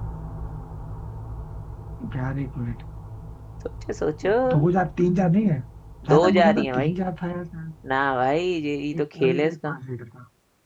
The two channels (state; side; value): identical; both; correlation 1.00